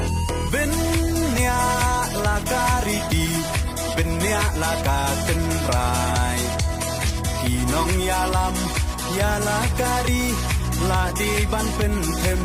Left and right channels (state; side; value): identical; both; correlation 1.00